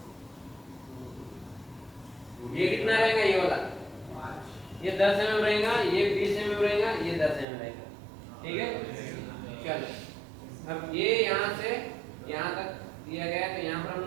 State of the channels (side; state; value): left; drops out; at 7.5 s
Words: ये कितना रहेगा, ये वाला, ये 10 mm रहेगा, ये 20 mm रहेगा, ये 10 mm रहेगा। ठीक है, चलो अब ये यहाँ से यहाँ तक दिया गया है, तो यहाँ पर हम